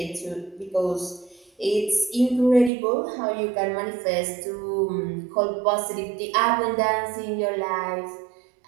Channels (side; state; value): left; drops out; at 2.7 s